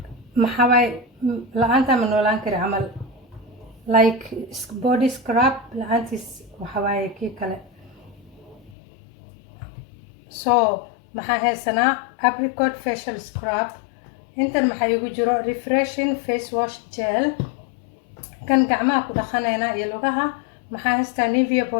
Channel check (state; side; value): drops out; right; at 8.8 s